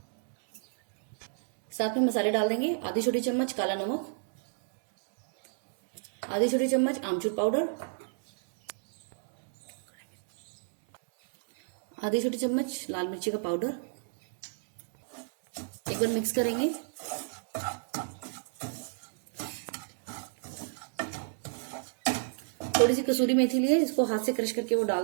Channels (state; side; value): silent; left; digital silence